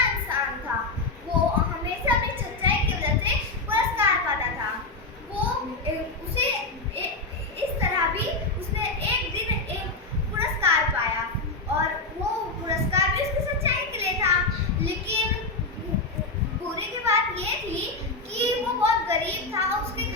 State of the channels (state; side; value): quieter; right; 3.5 dB